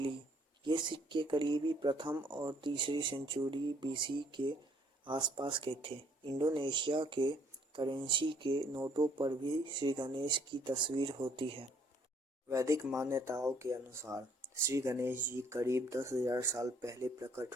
ये सिक्के करीबी प्रथम और तीसरी सेंचुरी बीसी के आसपास के थे। इंडोनेशिया के करेंसी के नोटों पर भी श्री गणेश की तस्वीर होती है। वैदिक मान्यताओं के अनुसार श्री गणेश जी करीब 10,000 साल पहले प्रकट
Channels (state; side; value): normal; both; correlation 0.63